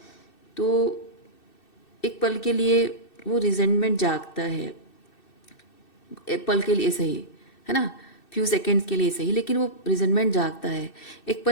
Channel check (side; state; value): right; late; 2.6 ms